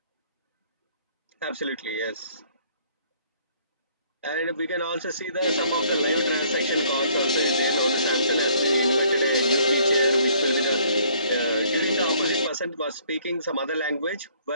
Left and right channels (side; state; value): both; inverted; correlation -0.62